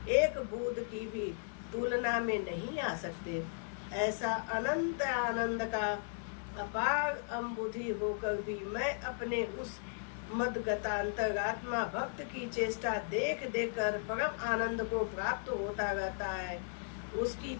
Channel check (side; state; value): right; silent; 54 dB below the other